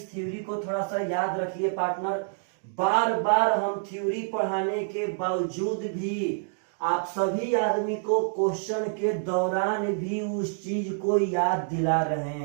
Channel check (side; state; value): left; silent; digital silence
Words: थ्योरी को थोड़ा सा याद रखिए पार्टनर, बार बार हम थ्योरी पढ़ाने के बावजूद भी आप सभी आदमी को क्वेश्चन के दौरान भी उस चीज को याद दिला रहे